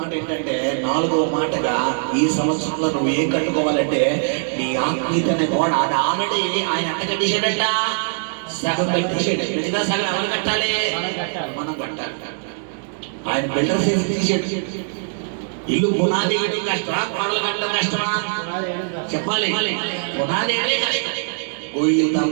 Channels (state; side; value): silent; left; digital silence